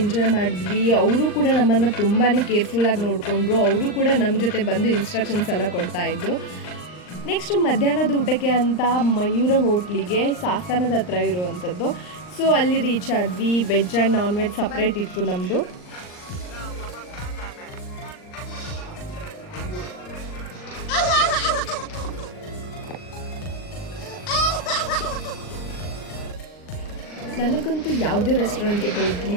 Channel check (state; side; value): late; right; 39 ms